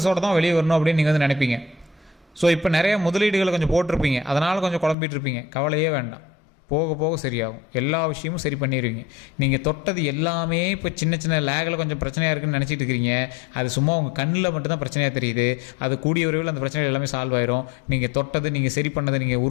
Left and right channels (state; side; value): drops out; right; at 5.0 s